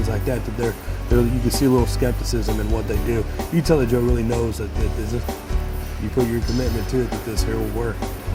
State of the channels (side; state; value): both; identical; correlation 1.00